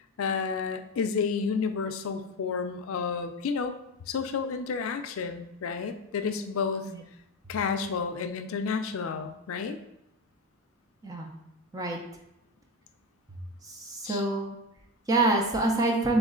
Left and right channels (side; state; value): both; normal; correlation 0.18